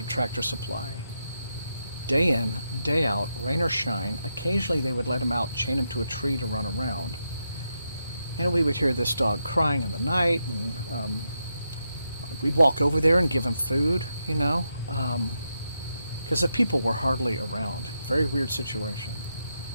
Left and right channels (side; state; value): both; inverted; correlation -0.84